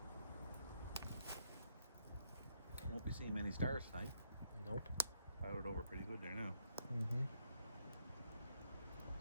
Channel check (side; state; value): both; inverted; correlation -0.73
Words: Won't be seeing many stars tonight. Nope. Clouded over pretty good there now. Mm-hmm.